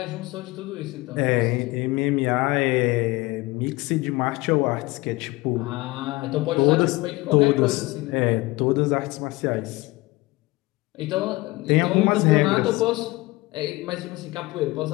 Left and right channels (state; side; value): quieter; right; 21.6 dB